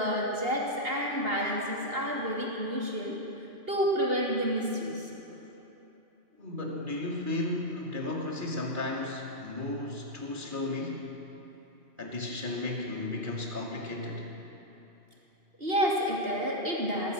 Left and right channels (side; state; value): left; late; 2.8 ms